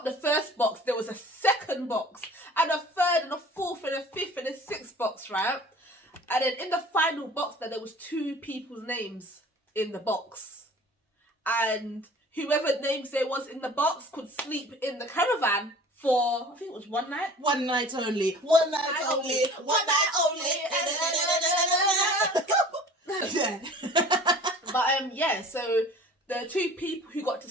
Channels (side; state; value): both; normal; correlation 0.45